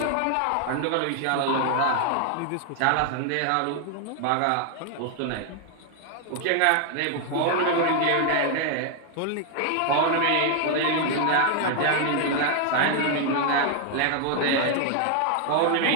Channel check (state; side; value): different; both; correlation 0.00